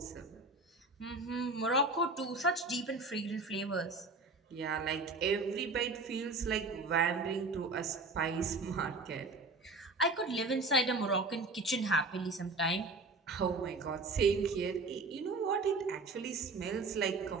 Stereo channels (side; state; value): left; quieter; 3.4 dB